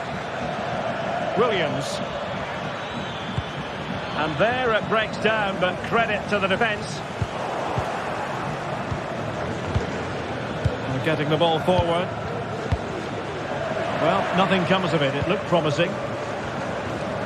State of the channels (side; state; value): both; identical; correlation 1.00